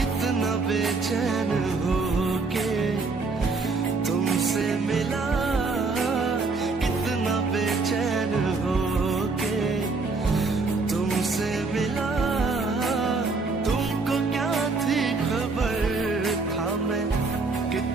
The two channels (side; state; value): left; quieter; 3.9 dB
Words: कितना बेचैन हो के तुमसे मिला, कितना बेचैन हो के तुमसे मिला। तुमको क्या थी खबर, था मैं